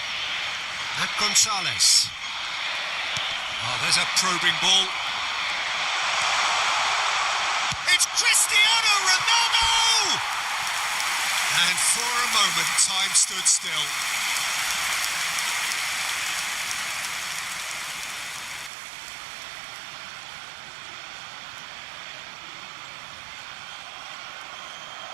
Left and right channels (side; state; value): left; drops out; at 18.7 s